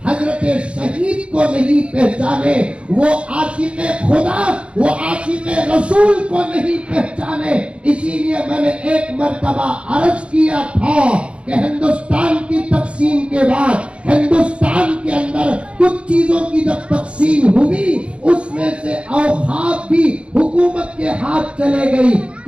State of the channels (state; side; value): late; left; 0.059 ms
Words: حضرت شہید کو نہیں پہچانے، وہ عاشق خدا، وہ عاشق رسول کو نہیں پہچانے۔ اسی لیے میں نے ایک مرتبہ عرض کیا تھا کہ ہندوستان کی تقسیم کے بعد ہندوستان کے اندر کچھ چیزوں کی جب تقسیم ہوئی اس میں سے اوقاف بھی حکومت کے ہاتھ چلے گئی۔